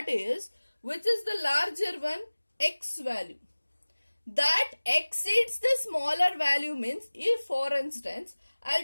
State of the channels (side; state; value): both; inverted; correlation -1.00